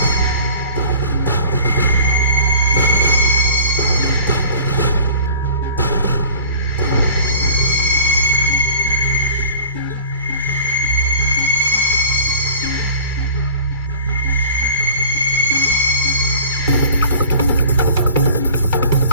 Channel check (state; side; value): inverted; both; correlation -0.44